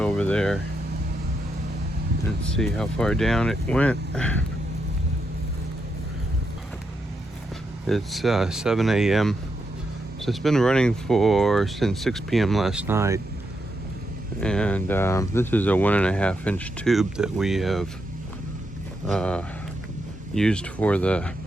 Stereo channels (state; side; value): normal; both; correlation 0.83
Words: there and see how far down it went. It's 7 a.m. So it's been running since 6 p.m. last night. And this is a 1.5 inch tube that we have used for the